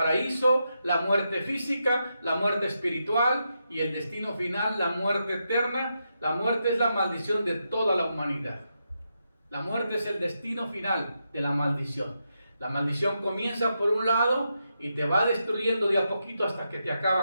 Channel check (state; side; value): inverted; both; correlation -0.85